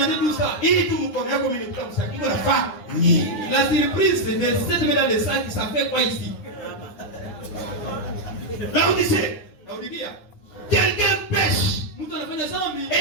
tout ça. La surprise de cette main dans les sacs, ça fait quoi ici? Là on disait, quelqu'un pêche.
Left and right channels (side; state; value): right; late; 9.8 ms